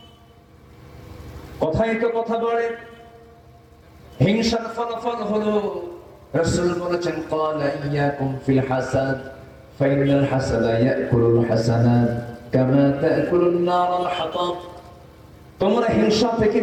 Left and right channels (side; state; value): both; identical; correlation 1.00